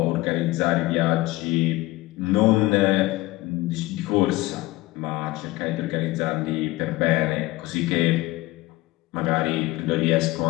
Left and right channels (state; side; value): quieter; right; 19.1 dB